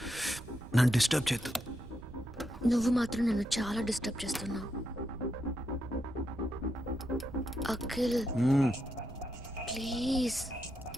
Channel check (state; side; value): noise; right; rumble, 14 dB below the sound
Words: నన్ను డిస్టర్బ్ చేయొద్దు. నువ్వు మాత్రం నన్ను చాలా డిస్టర్బ్ చేస్తున్నావు. అఖిల్, ప్లీజ్.